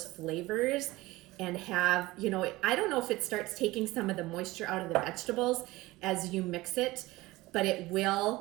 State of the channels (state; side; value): quieter; left; 19.6 dB